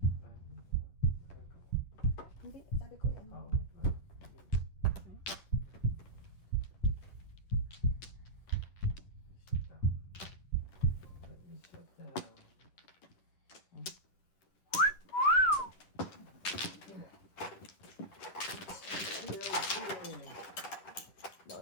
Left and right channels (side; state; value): right; late; 10 ms